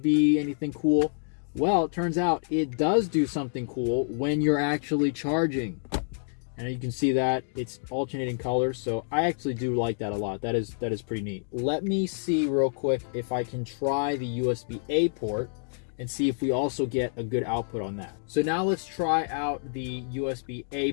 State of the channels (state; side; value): silent; right; digital silence